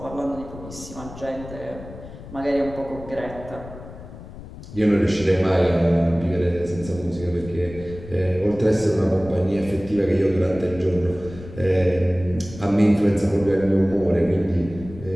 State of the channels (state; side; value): noise; left; rumble, 15 dB below the sound